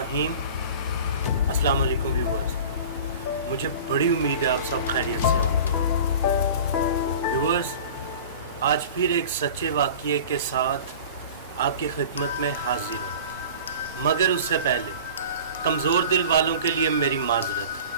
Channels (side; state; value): both; inverted; correlation -0.40